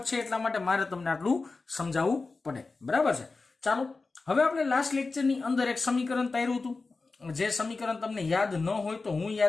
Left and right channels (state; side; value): quieter; right; 3.9 dB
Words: છે, એટલા માટે મારે તમને આટલું સમજાવવું પડે. બરાબર છે? ચાલો, હવે આપણે લાસ્ટ લેક્ચરની અંદર એક સમીકરણ તાર્યું હતું. જે સમીકરણ તમને યાદ ન હોય તો હું